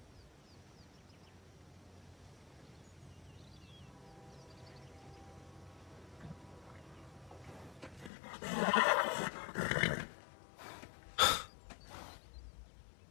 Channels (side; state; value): right; drops out; at 8.1 s